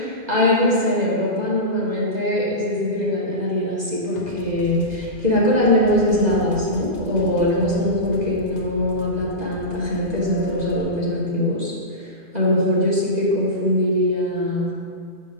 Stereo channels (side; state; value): left; late; 2.4 ms